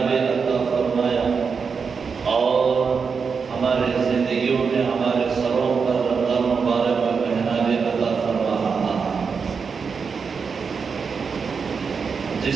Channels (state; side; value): quieter; left; 5.6 dB